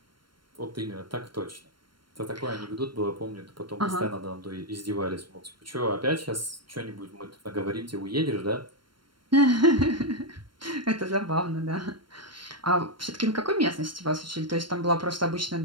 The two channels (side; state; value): left; late; 0.72 ms